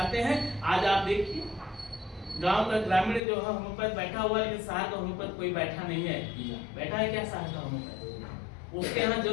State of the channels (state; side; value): drops out; right; at 3.2 s